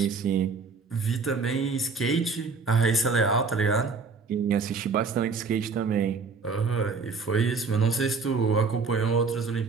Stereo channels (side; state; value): left; quieter; 4.7 dB